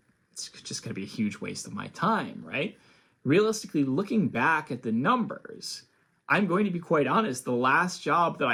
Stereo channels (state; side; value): identical; both; correlation 1.00